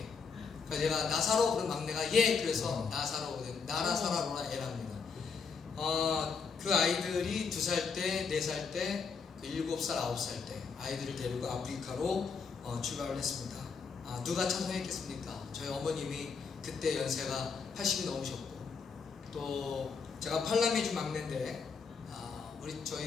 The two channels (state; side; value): quieter; right; 5.5 dB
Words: 그러니까 제가 나사로 그런 막내가 예, 그래서 나사로, 나라사라로라 애랍니다. 그 아이들이 2살 때, 4살 때, 7살, 9살 때 아이들을 데리고 아프리카로 출발을 했습니다. 누가 찬송했겠습니까? 저희 어머님이 그때 연세가 80이 넘으셨고 또 제가 팔남이주 막내인데